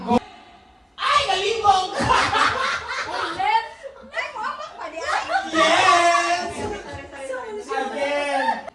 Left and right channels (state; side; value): identical; both; correlation 1.00